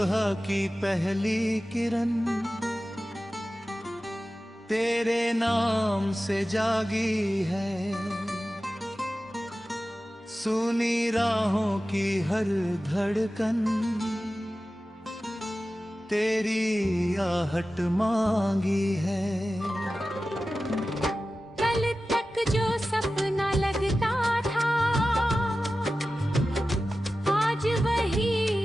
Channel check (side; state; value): both; normal; correlation 0.95